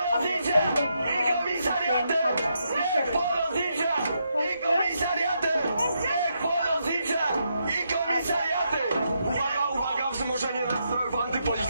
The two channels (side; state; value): both; inverted; correlation -0.80